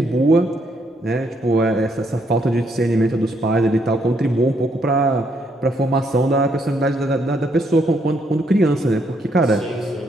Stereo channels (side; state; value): both; normal; correlation 0.73